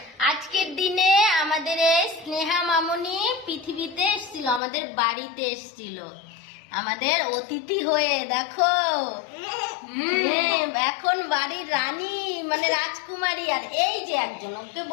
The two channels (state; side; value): drops out; right; at 4.6 s